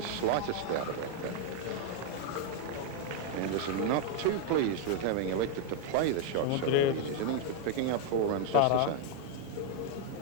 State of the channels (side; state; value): both; different; correlation 0.01